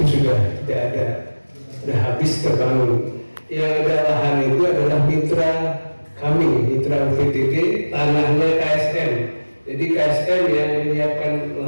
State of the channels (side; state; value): both; inverted; correlation -1.00